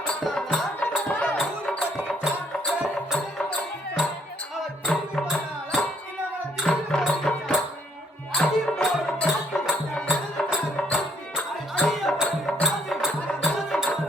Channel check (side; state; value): both; normal; correlation 0.67